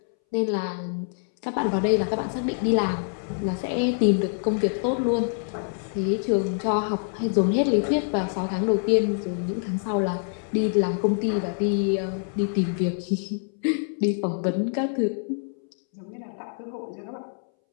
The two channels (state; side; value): silent; right; 61 dB below the other